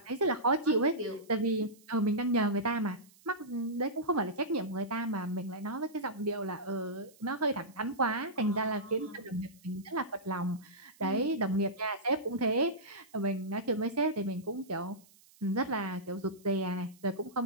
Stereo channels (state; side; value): noise; right; hiss, 27 dB below the sound